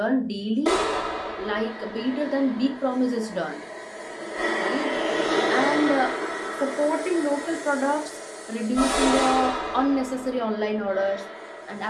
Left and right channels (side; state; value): both; identical; correlation 1.00